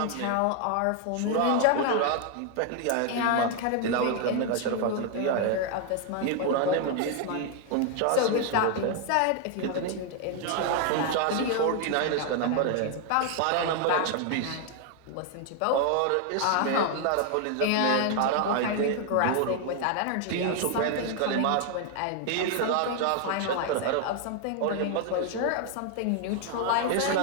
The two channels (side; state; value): both; different; correlation 0.00